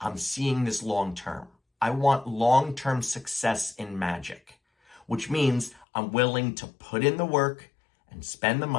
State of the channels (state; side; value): drops out; right; at 5.9 s